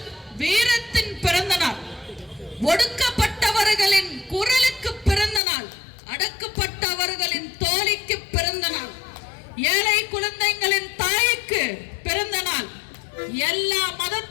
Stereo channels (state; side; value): drops out; right; at 5.4 s